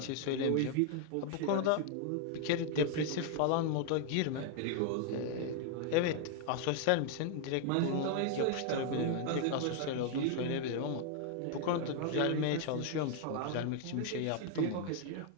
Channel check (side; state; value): both; different; correlation 0.00